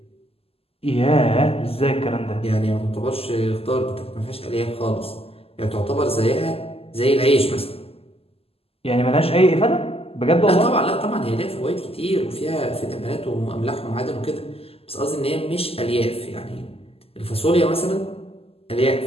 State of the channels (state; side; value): late; right; 0.28 ms